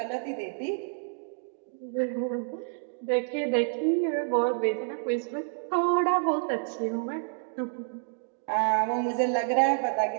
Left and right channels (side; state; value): left; silent; digital silence